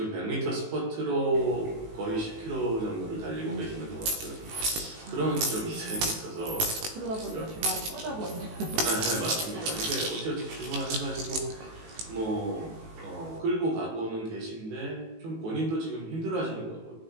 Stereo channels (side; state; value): left; late; 18 ms